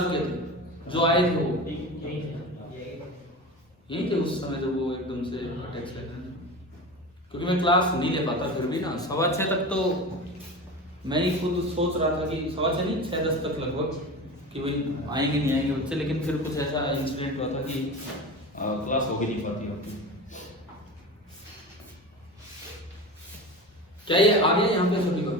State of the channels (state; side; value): normal; both; correlation 0.30